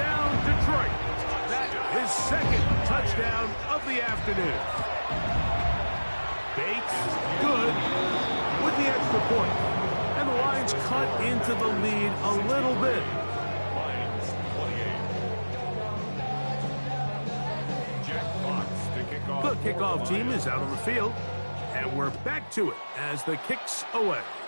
Detroit. His 2nd touchdown of the afternoon. Bates, good, with the extra point. And the Lions cut into the lead a little bit. Lions 28. Jack Fox to kick off. The kickoff team is out on the field. And we're back to it as the kick's away.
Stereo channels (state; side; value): inverted; both; correlation -1.00